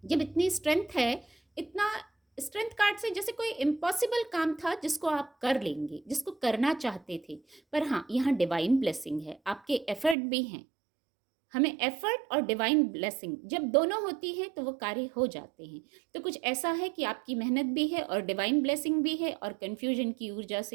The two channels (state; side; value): drops out; left; at 10.2 s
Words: जब इतनी स्ट्रेंथ है, इतना स्ट्रेंथ कार्ड से जैसे कोई इम्पॉसिबल काम था जिसको आप कर लेंगे, जिसको करना चाहते थे। पर हाँ, यहाँ डिवाइन ब्लेसिंग है, आपके एफर्ट भी हैं। हमें एफर्ट और डिवाइन ब्लेसिंग जब दोनों होती है तो वो कार्य हो जाते हैं। तो कुछ ऐसा है कि आपकी मेहनत भी है और डिवाइन ब्लेसिंग भी है, और कन्फ्यूजन की ऊर्जा